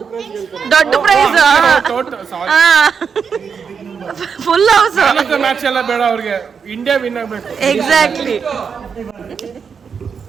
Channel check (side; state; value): left; quieter; 6.3 dB